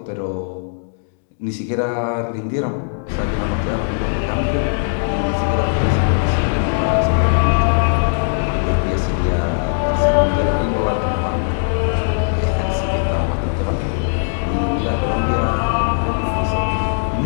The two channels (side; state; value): right; silent; digital silence